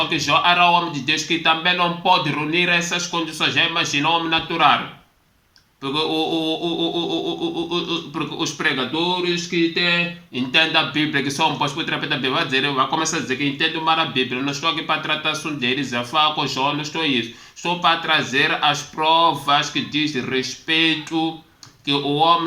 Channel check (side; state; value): both; identical; correlation 1.00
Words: que Jó era o homem de Deus que também não pode reunir essas condições. Já imaginou o homem natural? Porque, porque os pregadores que entendem a Bíblia, que são postos por terapeuta da Bíblia, vai começar a dizer que entendem mal a Bíblia. Não estou aqui para tratar assunto de Elisafá com Jó, não estou isso. Estou para trazer as provas que diz respeito que o homem